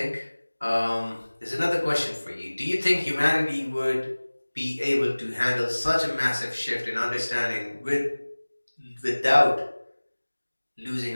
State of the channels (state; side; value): inverted; both; correlation -1.00